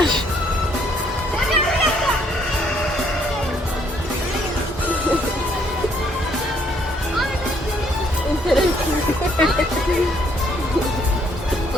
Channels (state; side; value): normal; both; correlation 0.67